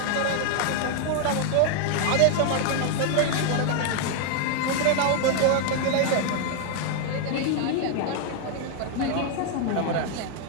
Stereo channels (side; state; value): both; different; correlation 0.00